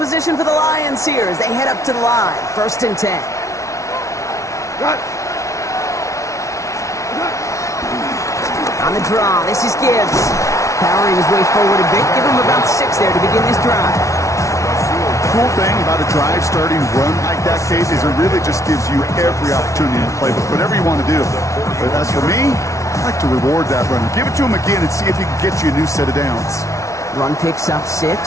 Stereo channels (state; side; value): late; right; 0.15 ms